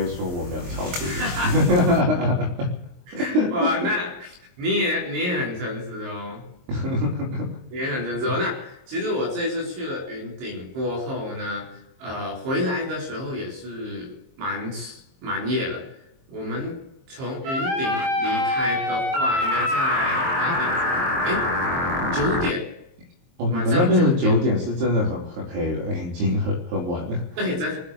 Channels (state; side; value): late; left; 23 ms